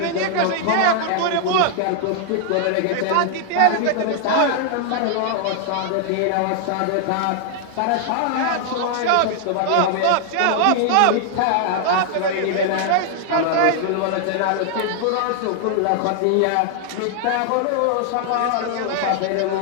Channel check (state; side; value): different; both; correlation 0.00